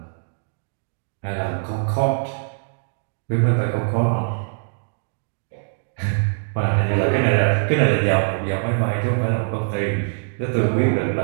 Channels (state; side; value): silent; left; digital silence